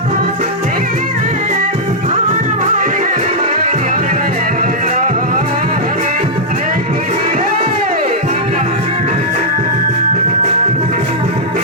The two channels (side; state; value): both; normal; correlation -0.07